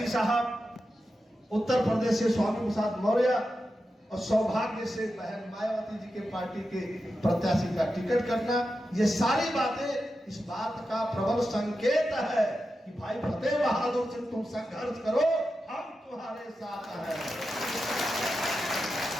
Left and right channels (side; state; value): both; normal; correlation 0.90